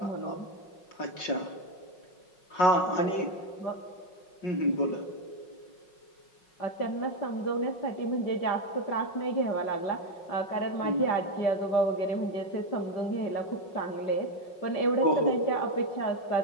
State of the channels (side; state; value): right; late; 5.5 ms